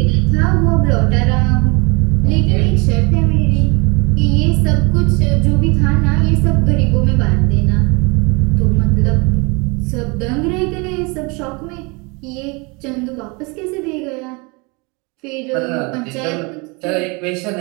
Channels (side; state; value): left; quieter; 29.0 dB